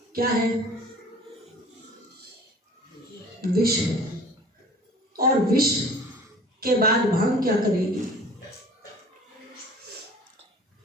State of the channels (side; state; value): both; normal; correlation 0.46